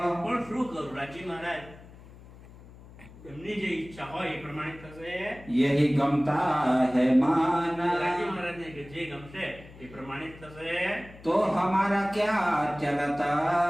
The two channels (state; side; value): noise; left; hum, 20 dB below the sound